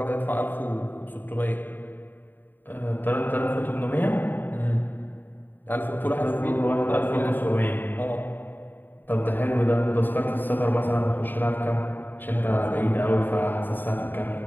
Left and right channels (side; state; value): right; late; 0.091 ms